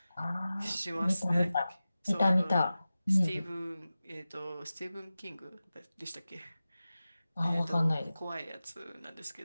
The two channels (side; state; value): both; inverted; correlation -0.95